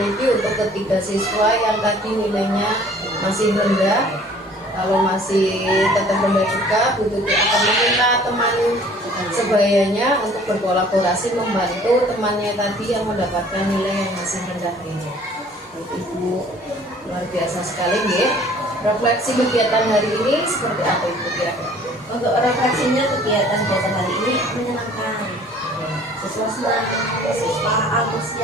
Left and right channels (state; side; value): normal; both; correlation 0.53